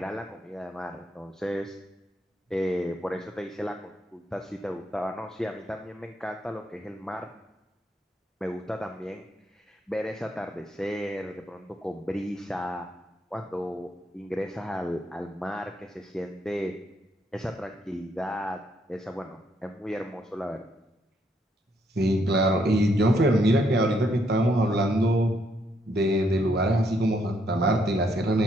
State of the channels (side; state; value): both; normal; correlation 0.73